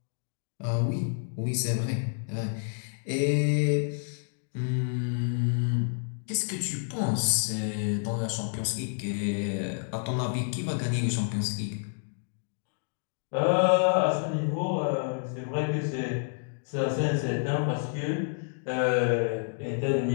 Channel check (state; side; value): silent; right; digital silence